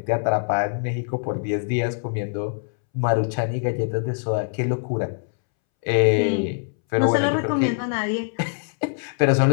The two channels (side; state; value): right; silent; 63 dB below the other